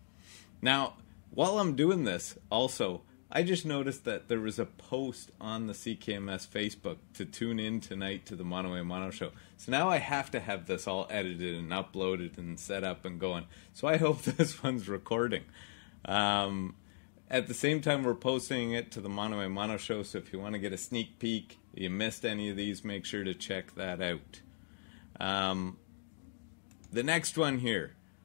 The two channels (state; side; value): silent; right; digital silence